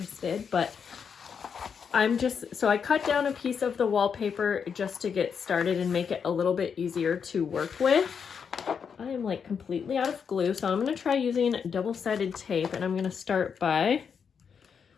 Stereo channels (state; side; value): quieter; right; 6.7 dB